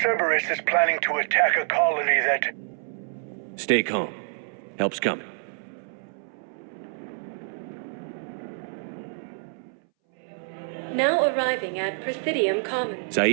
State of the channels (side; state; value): left; silent; 60 dB below the other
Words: Cerberus is planning to attack a colony that... Stay calm. Help's coming. Now arriving at Presidium Commons.